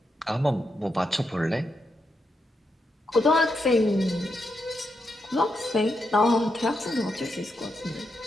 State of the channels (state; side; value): normal; both; correlation 0.83